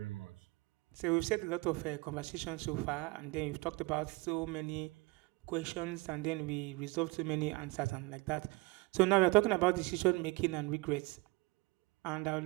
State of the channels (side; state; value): left; quieter; 24.4 dB